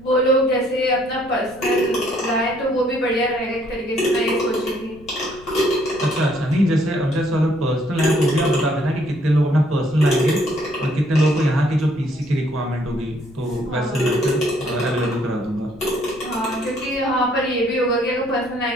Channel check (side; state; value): left; noise; rumble, 23 dB below the sound